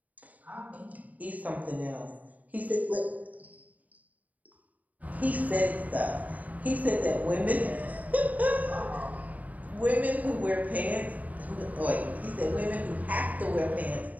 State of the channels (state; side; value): late; left; 0.074 ms